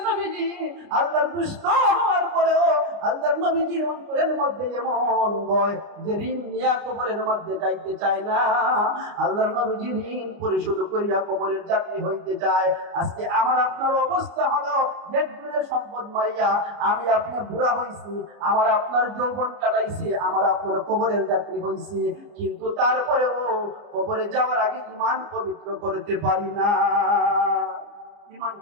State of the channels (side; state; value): left; late; 29 ms